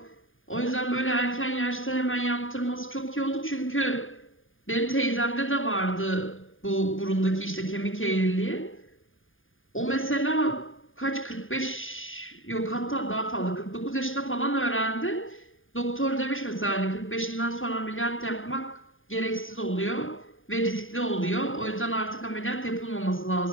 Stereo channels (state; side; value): late; right; 0.59 ms